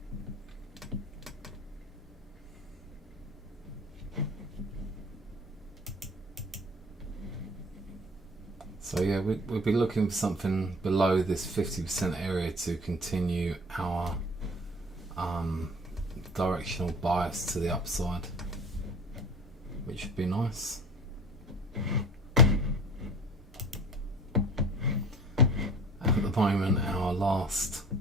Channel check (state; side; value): normal; both; correlation 0.43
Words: So yeah, we'll be looking for something below this 50% area to continue our directional bias to the upside, which would be nice. At the moment, our last